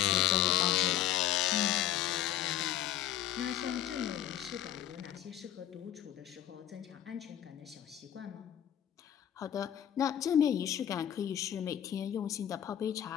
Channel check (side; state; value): right; quieter; 11.4 dB